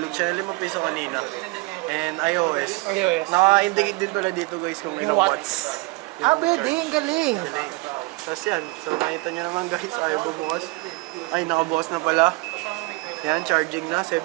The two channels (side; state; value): left; quieter; 24.6 dB